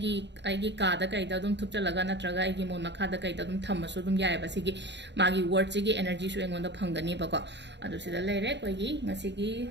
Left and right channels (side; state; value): left; late; 0.51 ms